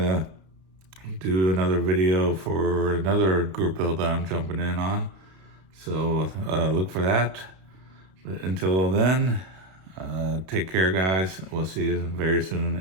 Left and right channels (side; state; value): left; late; 32 ms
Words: to do another video for another group build that I'm jumping in on. So look for that. But until then, take care, guys. We'll see you very